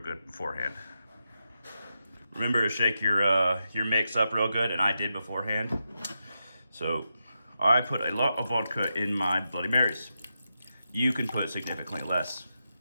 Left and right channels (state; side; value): inverted; both; correlation -0.87